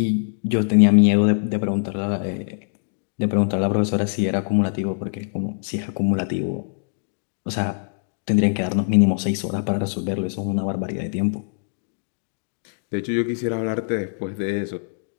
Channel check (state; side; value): silent; right; digital silence